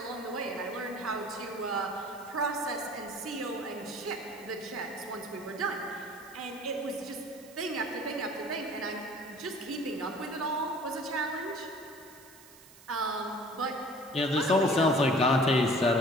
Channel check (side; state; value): right; noise; hiss, 22 dB below the sound